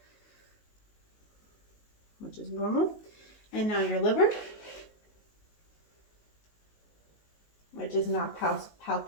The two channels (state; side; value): late; right; 19 ms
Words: which is normal. And now your liver, which is not